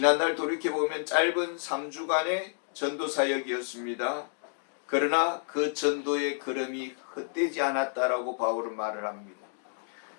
돌이켜보면 짧은 3주간의 전도 사역이었습니다. 그러나 그 전도의 걸음이 헛되지 않았다라고 바울은 말을 합니다.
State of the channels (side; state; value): right; silent; digital silence